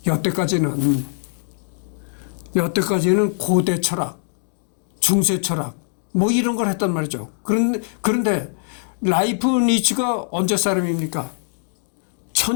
여태까지는 고대 철학, 중세 철학 뭐 이런 걸 했단 말이죠. 그런데 라이프니츠가 언제 사람입니까?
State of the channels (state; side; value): silent; right; digital silence